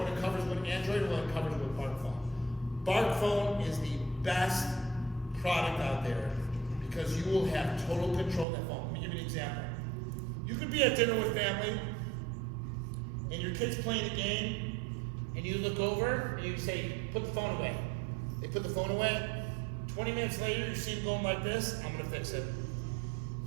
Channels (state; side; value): drops out; left; at 8.5 s